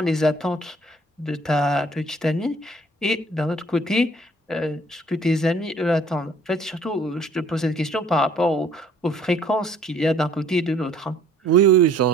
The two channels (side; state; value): both; normal; correlation 0.57